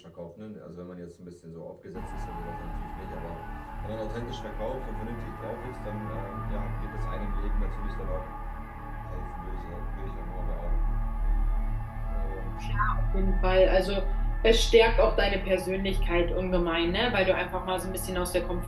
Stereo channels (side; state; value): both; identical; correlation 1.00